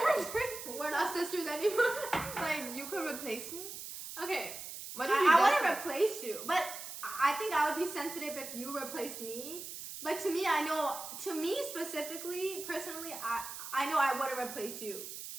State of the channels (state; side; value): noise; right; hiss, 9 dB below the sound